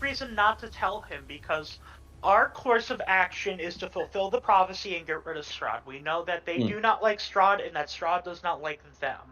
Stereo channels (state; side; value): identical; both; correlation 1.00